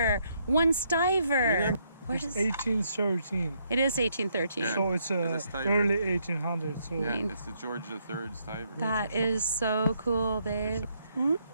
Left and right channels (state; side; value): inverted; both; correlation -0.73